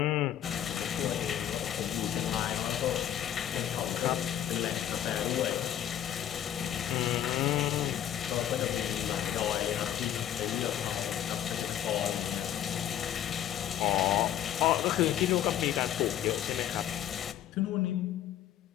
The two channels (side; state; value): right; quieter; 10.9 dB